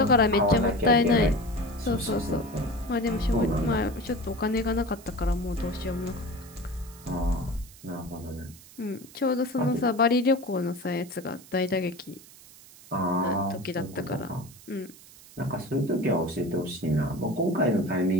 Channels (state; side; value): noise; right; hiss, 21 dB below the sound